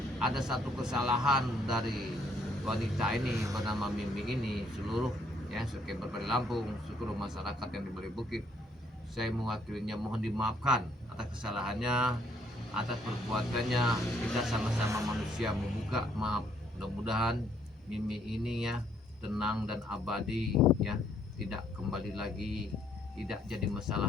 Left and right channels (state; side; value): normal; both; correlation 0.68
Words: ada satu kesalahan dari wanita ini bernama Mimi ini, seluruh, ya, sekebar Bali Lampung, seluruh masyarakat yang di Bali Bukit, saya mewakilinya mohon dimaafkan atas kesalahannya, atas perbuatannya. Kita sama-sama manusia, membuka maaf. Mudah-mudahan Mimi ini, ya, tenang dan abadi, ya, tidak kembali lagi, tidak jadi